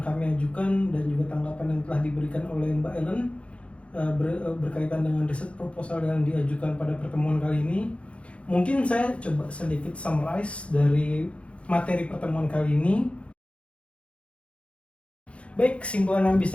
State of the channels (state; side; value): late; right; 0.061 ms